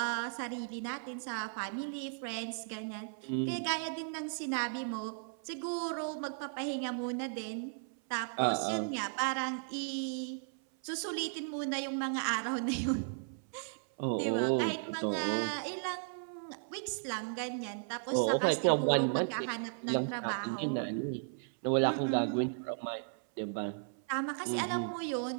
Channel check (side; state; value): left; silent; 54 dB below the other